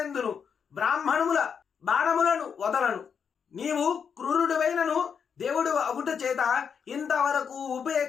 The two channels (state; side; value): quieter; right; 6.8 dB